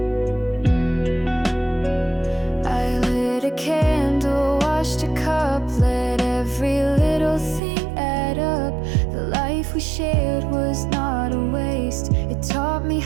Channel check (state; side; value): drops out; left; at 7.6 s